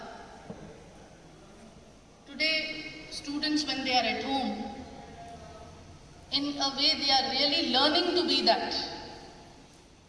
Today, students, when they are at home, in a way they are really learning to be that.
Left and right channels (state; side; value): identical; both; correlation 1.00